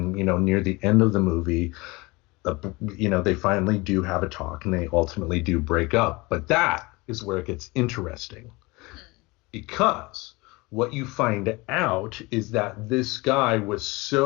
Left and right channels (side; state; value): right; quieter; 24.0 dB